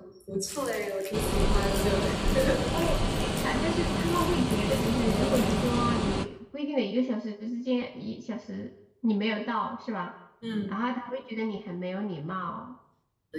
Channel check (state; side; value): identical; both; correlation 1.00